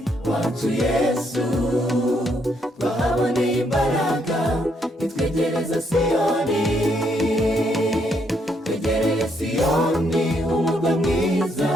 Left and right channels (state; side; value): normal; both; correlation 0.73